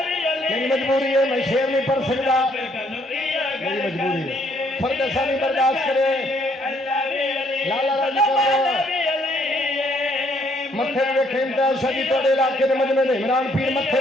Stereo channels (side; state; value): both; normal; correlation 0.68